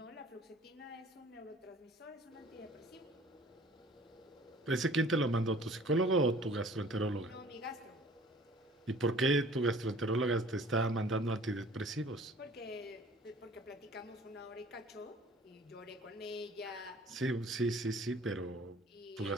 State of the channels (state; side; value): normal; both; correlation 0.50